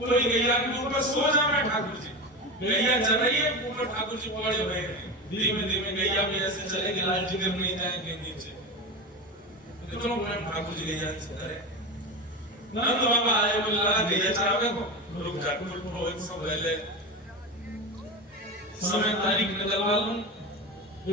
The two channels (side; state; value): both; normal; correlation 0.22